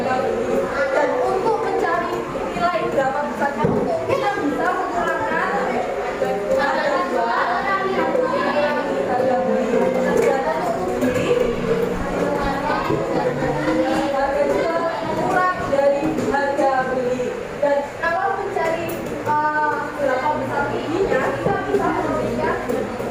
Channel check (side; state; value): both; identical; correlation 1.00